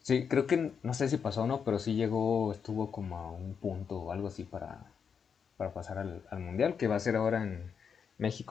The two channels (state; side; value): quieter; right; 6.7 dB